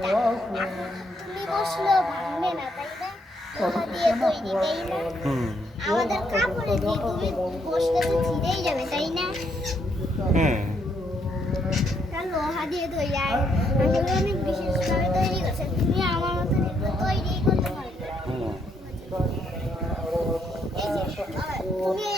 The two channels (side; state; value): both; normal; correlation 0.74